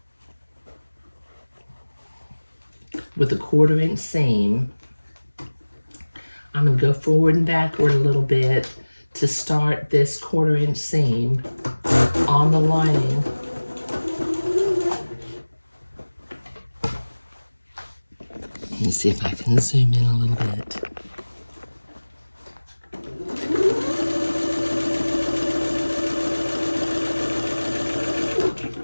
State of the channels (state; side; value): inverted; both; correlation -1.00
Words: With a 1/4 inch seam. I'm going to go forward and backward a little bit to start this 1/4 inch seam on the lining. Let me see if I can zoom in a little bit.